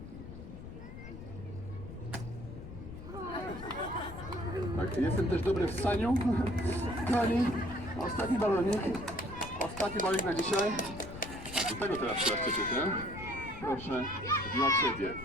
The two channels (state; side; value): noise; left; rumble, 12 dB below the sound